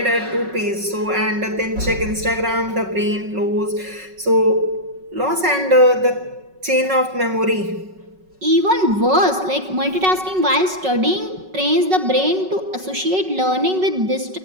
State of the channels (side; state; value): left; late; 5.3 ms